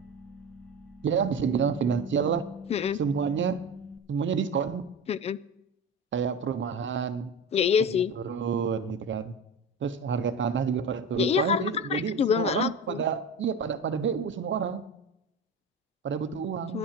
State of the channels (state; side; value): normal; both; correlation 0.27